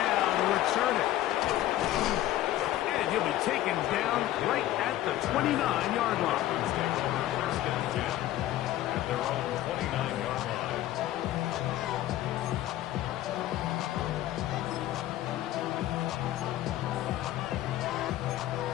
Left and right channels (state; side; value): quieter; right; 14.2 dB